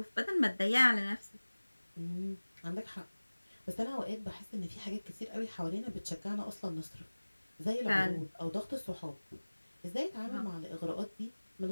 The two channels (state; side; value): inverted; both; correlation -1.00